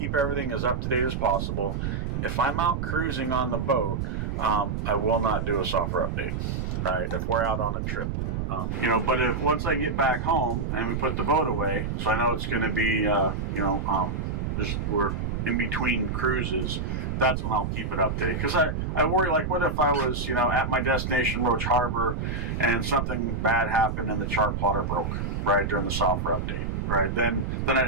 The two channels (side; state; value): right; noise; rumble, 2 dB below the sound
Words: everything as up to date as possible. If I'm out cruising on the boat, I will not do a software update, right? If we're out on a trip, but if once I get back home and we put the boat away, so I know it's going to be, just we're in between cruises, that's when I'll keep it updated. Because I worry, like, what if I was, at my destination, Roach Harbor, and something bad happened and the chart plotter broke, right, during the software update, right? Then I'd